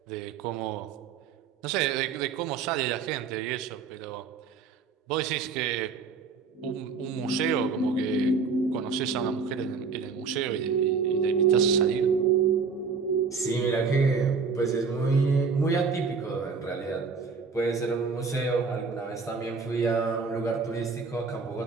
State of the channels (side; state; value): left; quieter; 5.1 dB